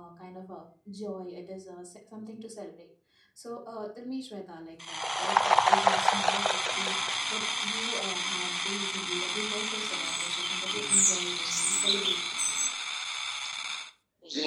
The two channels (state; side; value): identical; both; correlation 1.00